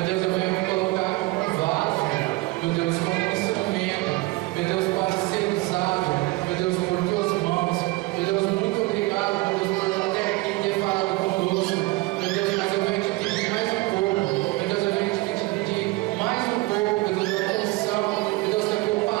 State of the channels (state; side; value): quieter; left; 21.8 dB